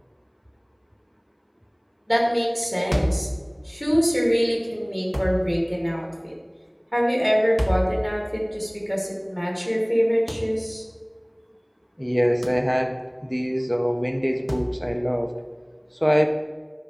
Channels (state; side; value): identical; both; correlation 1.00